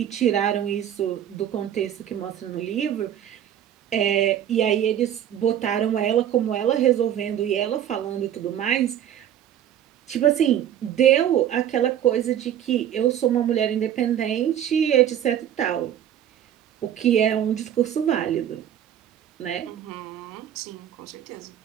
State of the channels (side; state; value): left; quieter; 10.4 dB